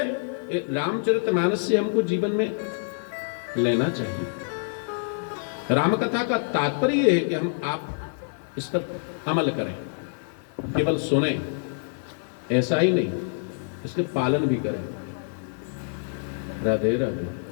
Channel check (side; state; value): right; silent; 60 dB below the other